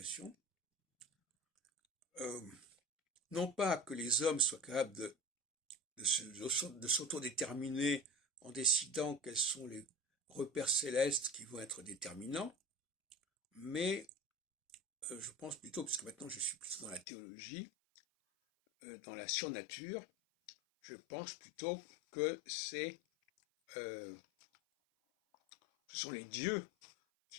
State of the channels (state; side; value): drops out; right; at 17.1 s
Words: Non pas que les hommes soient capables de s'autodéterminer en décidant quels sont les repères célestes qui vont être déterminants, mais je pense plutôt, puisque maintenant je suis plutôt dans la théologie, dans la surnature, je pense plutôt que ce sont les dieux